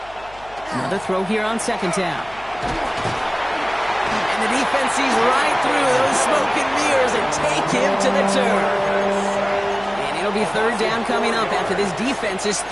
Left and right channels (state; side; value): noise; left; hum, 23 dB below the sound